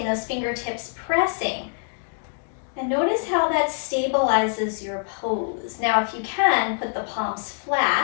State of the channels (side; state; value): right; silent; digital silence